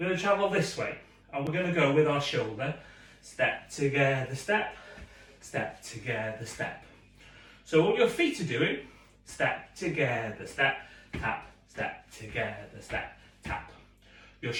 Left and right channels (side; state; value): both; identical; correlation 1.00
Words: going to travel this way, and we're going to go with our shoulder. Step together, step, step together, step. So what your feet are doing, step together, step, tap, step together, step, tap. Your